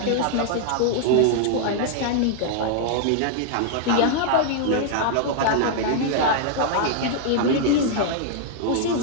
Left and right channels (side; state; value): both; different; correlation -0.01